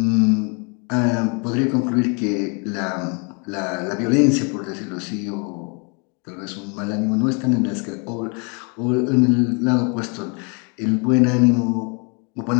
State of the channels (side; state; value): right; quieter; 34.5 dB